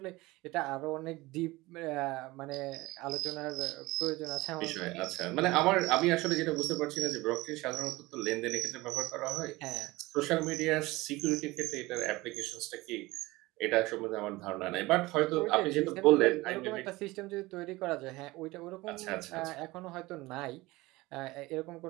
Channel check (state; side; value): quieter; left; 20.6 dB